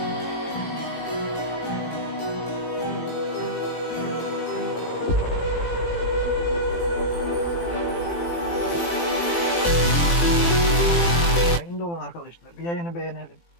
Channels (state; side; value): late; right; 18 ms